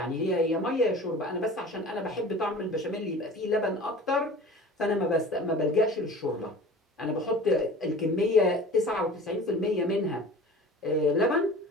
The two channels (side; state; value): both; normal; correlation 0.41